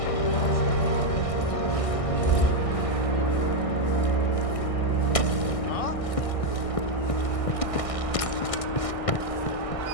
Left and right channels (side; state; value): right; late; 1.6 ms